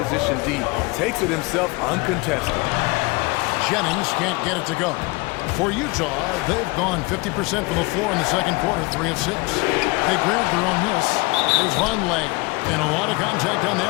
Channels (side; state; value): right; quieter; 25.4 dB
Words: D. Takes it himself uncontested. Jennings can't get it to go. For Utah, they've gone 50% from the floor in the second quarter, 3 of 6. They grabbed their own miss. There's Vonleh. And a lot of contact on